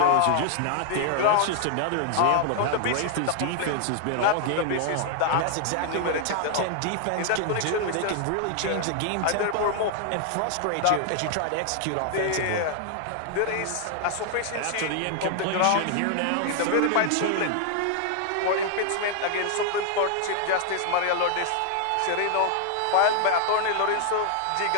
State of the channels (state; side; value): different; both; correlation 0.00